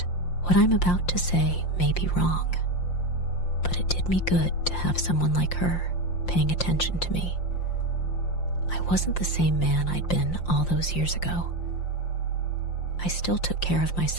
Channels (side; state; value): right; late; 5.7 ms